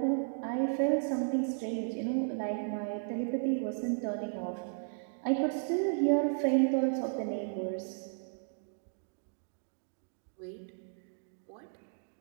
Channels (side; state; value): left; silent; digital silence